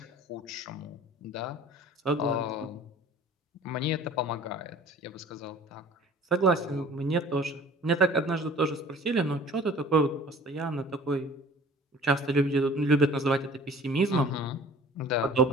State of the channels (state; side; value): normal; both; correlation 0.47